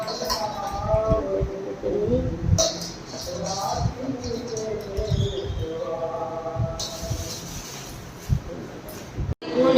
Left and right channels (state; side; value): identical; both; correlation 1.00